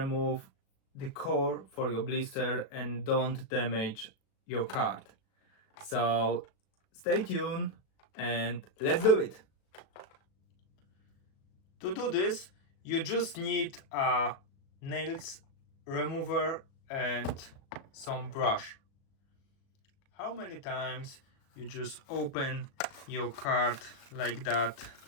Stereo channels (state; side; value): late; right; 37 ms